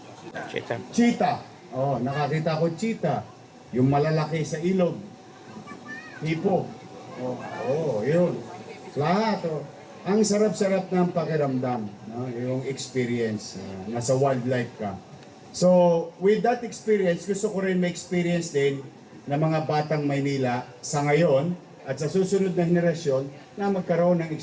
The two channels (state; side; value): identical; both; correlation 1.00